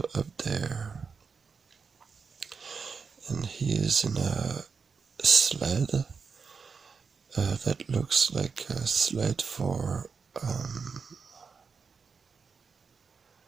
up there, and he is in a sled that looks like a sled for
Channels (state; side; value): quieter; left; 5.4 dB